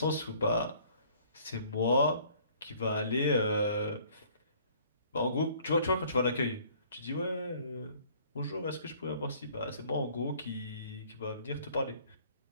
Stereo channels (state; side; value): inverted; both; correlation -0.57